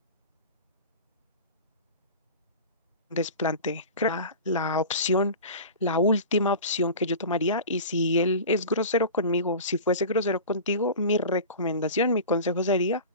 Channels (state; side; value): inverted; both; correlation -0.34